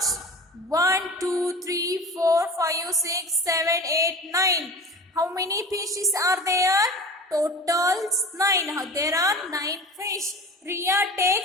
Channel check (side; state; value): both; normal; correlation 0.36